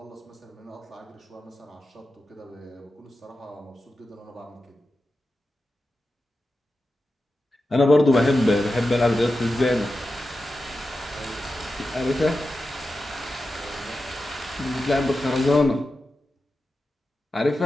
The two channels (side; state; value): both; normal; correlation 0.91